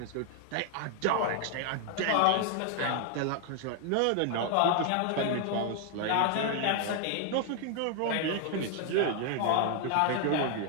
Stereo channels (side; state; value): both; different; correlation 0.00